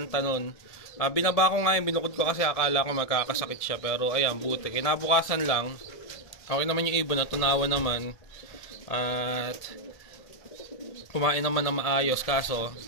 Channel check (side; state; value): right; late; 1.7 ms